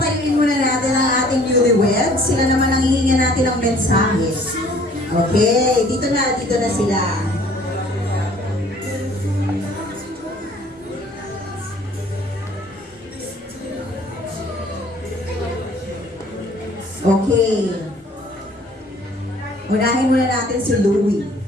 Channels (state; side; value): normal; both; correlation 0.55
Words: muna natin ang ating newlyweds. Sila naman ang hihingan natin ng mensahe. Okay, dito na sila. Okay. Unahin muna natin si Louie.